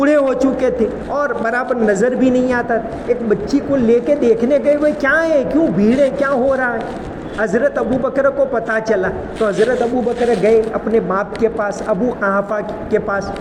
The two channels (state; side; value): identical; both; correlation 1.00